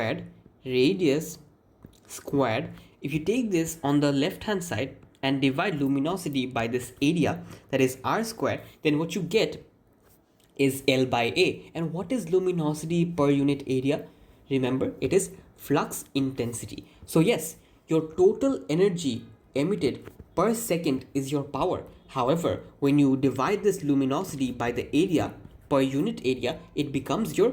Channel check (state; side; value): identical; both; correlation 1.00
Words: if you take this on the left hand side and divide luminosity by this area, that is r squared, then what you get is L by A. And what is luminosity per unit area? Remember, it is flux intensity. So yes, your total energy emitted per second is your power. However, when you divide this luminosity by the area per unit area, it becomes